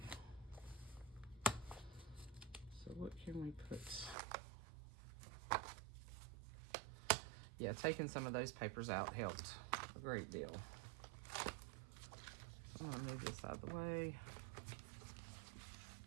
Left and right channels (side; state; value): left; drops out; at 4.2 s